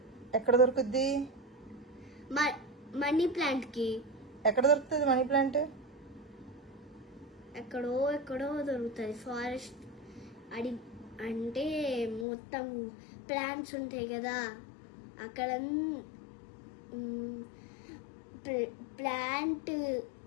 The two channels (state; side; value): drops out; right; at 12.2 s